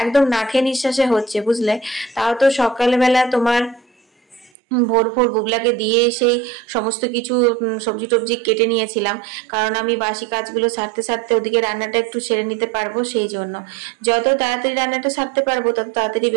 একদম না খেয়ে নিঃশ্বাসে হচ্ছে, বুঝলে। তাও তো সকালবেলা তোমার ভোর ভোর বুবলাকে দিয়ে সেই সমস্ত কিছু সবজি টবজি কেটে নিয়েছিলাম, কারণ আমি বাসি কাজগুলো সারতে সারতে ওদিকে রান্নাটা একটু সেরে নিতে পারবো। সেই জন্য যত তাড়াতাড়ি রান্নাটা সারতে পারবো তত তাড়াতাড়ি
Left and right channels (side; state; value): left; drops out; at 4.5 s